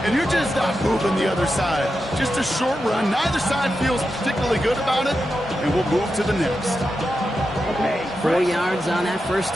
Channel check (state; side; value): normal; both; correlation 0.89